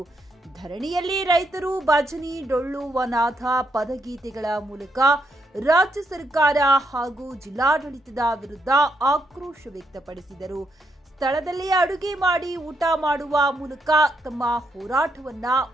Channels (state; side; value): normal; both; correlation 0.78